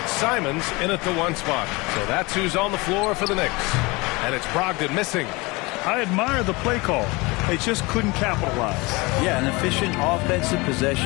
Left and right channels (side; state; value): right; quieter; 24.7 dB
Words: Simons in at the 1 spot. So that's who's on the floor for the Knicks. And it's Brogdon missing. I admire the play call. They just couldn't capitalize. Yeah, an efficient offensive